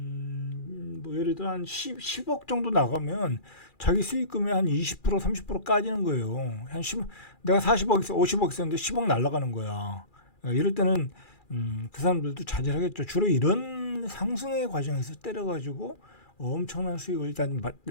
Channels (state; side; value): late; right; 2.4 ms